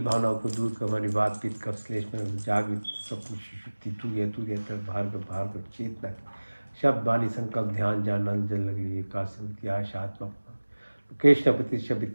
भावनाओं को दूर कर, हमारी बात पीत कप श्लेष में जागृत स्वप्न सुषुप्ति तूर्य भार्गव चेतना, शब्द वाणी संकल्प ध्यान जान जल लगी एकास्मृति आशा आत्मा, कृष्ण प्रतिष्ठा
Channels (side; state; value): both; inverted; correlation -1.00